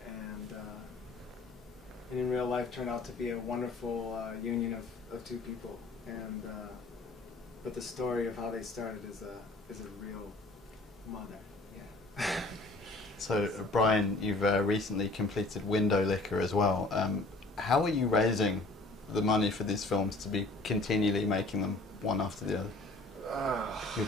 and in real life turned out to be a wonderful union of 2 people, and but the story of how they started is a real mother. Yeah. So, Brian, you've recently completed Window Liquor as well. How are you raising the money for these films to be continually making them one after the other? You're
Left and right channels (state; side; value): quieter; right; 3.0 dB